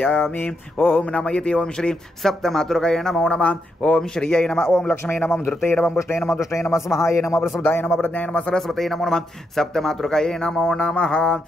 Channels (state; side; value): normal; both; correlation 0.82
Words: ओम नमः इति ओम श्री सप्तमातृकाय नमो नमः। ओम श्रीयै नमः। ओम लक्ष्मी नमः धृते नमः पुष्टे नमः दुष्टे नमः स्वाहाय नमः प्रसुदाय नमः प्रज्ञाय नमः सरस्वती नमो नमः सप्तमातृकाय नमो नमः।